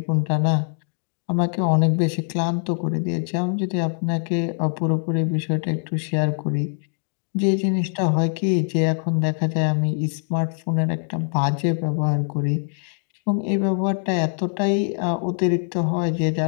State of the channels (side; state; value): right; silent; digital silence